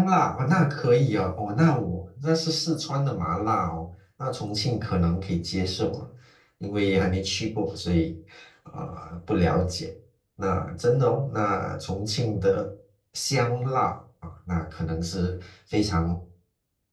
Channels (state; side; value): identical; both; correlation 1.00